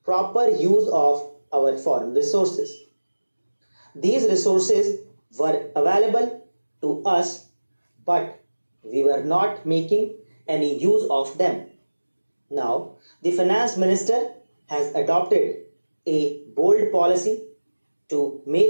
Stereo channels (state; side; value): inverted; both; correlation -1.00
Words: proper use of our foreign resources. These resources were available to us, but we were not making any use of them. Now, the finance minister has adopted a bold policy to